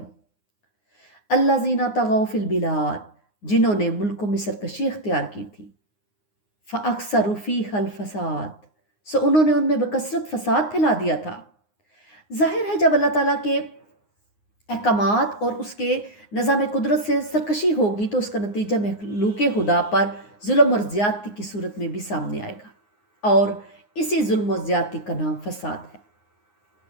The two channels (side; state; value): right; late; 9.6 ms